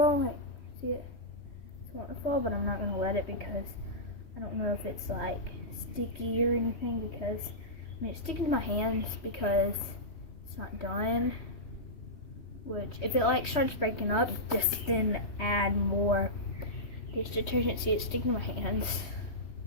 Like, see it? It's wanting to fall, but I'm not gonna let it because I don't know if it's like sticky or anything. Because I mean, it's sticking to my hands because it's not done. Which, if it like starts breaking up, just then add more dish detergent. See, it's sticking to my hands.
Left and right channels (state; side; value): late; right; 3.2 ms